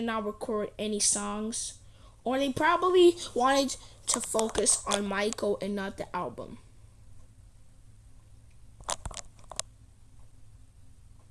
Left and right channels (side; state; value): both; identical; correlation 1.00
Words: not record any songs, or they probably wanted to focus on Michael and not the album.